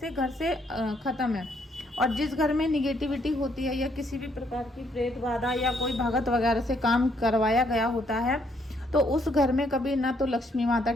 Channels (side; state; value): both; normal; correlation 0.70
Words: घर से ख़त्म है। और जिस घर में निगेटिविटी होती है या किसी भी प्रकार की प्रेत बाधा या कोई भगत वगैरह से काम करवाया गया होता है, तो उस घर में कभी ना तो लक्ष्मी माता